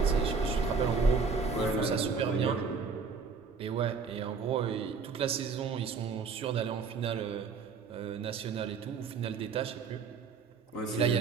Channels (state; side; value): quieter; left; 5.2 dB